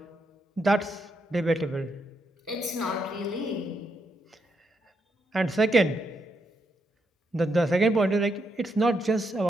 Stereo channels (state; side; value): normal; both; correlation 0.80